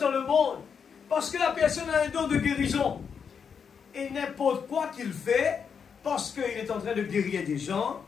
dans le monde. Parce que la personne a un don de guérison. Et n'importe quoi qu'il fait, parce qu'il est en train de guérir des gens,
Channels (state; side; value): quieter; right; 6.6 dB